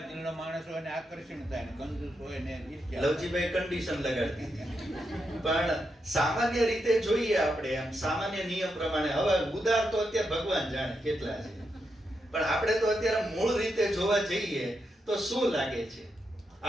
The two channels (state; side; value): normal; both; correlation 0.84